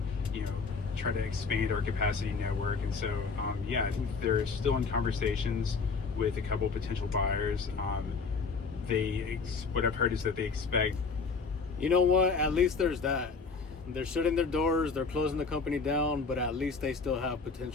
try to expand our capacity network? And so, I think they're still in conversations with a couple potential buyers. What I've heard is that they expect. You know what? At least there's that. They're shutting their doors, they're closing the company down, but at least they still have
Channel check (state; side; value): quieter; right; 4.7 dB